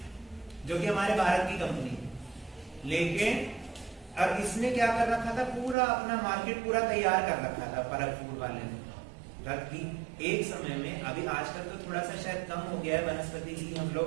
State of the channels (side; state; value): left; drops out; at 5.8 s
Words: जो कि हमारे भारत की कंपनी थी। लेकिन और इसने क्या कर रखा था, पूरा अपना मार्केट पूरा तैयार कर रखा था परग फूड वाले ने। जबकि एक समय में, अभी आजकल तो थोड़ा सा शायद कम हो गया है, वनस्पति घी हम